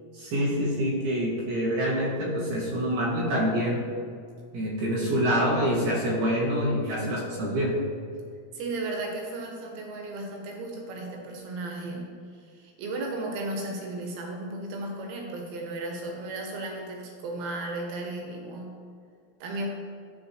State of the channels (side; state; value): left; late; 17 ms